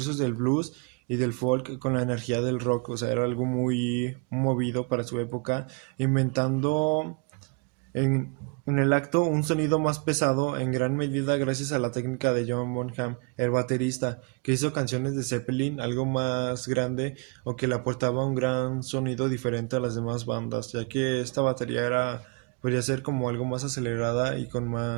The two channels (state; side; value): quieter; left; 32.0 dB